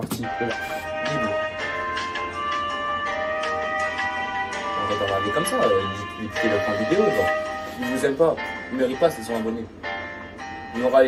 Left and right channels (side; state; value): both; identical; correlation 1.00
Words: Libre. On va pas regarder comme ça, écoutez la vidéo, genre. Ils vous aiment pas, ils méritent pas, c'est 100 abonnés. Il y aura